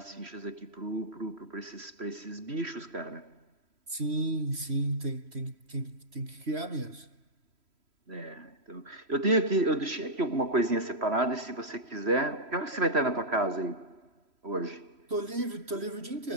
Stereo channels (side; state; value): left; late; 3.1 ms